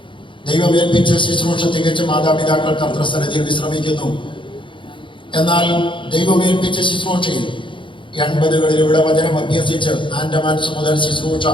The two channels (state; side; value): late; right; 0.24 ms